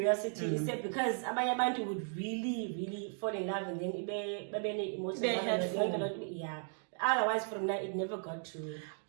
You said, because abantu would really, really fall in love, and then yeah. Otherwise, from that, it never got to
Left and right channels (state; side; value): silent; left; 54 dB below the other